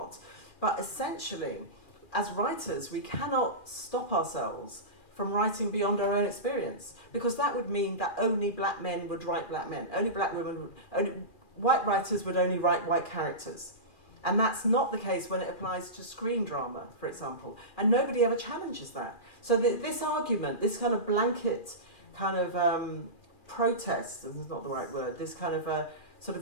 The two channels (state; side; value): late; right; 2.4 ms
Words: But essentially, as writers, we cannot stop ourselves from writing beyond our own experience, because that would mean that only black men would write black men, only black women, only white writers would only write white characters. And that's not the case when it applies to screen drama, for example. And nobody ever challenges that. So this argument, this kind of blanket kind of protest, this is not the right word, this kind of sort